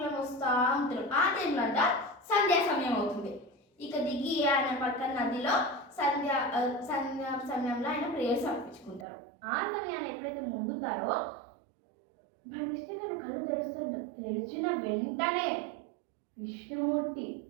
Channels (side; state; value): left; drops out; at 9.1 s